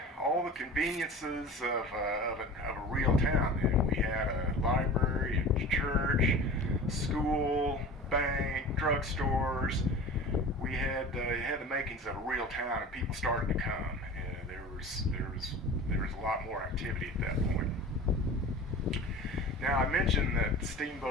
conveniences of a real town then. We had a library, a church, school, bank, drugstores. We had the makings of a real town, and people started to come. And there was a lot more activity at that point. Now, I mentioned that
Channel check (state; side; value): normal; both; correlation 0.37